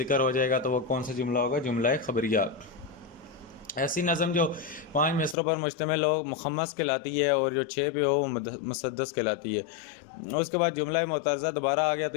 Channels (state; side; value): drops out; right; at 5.4 s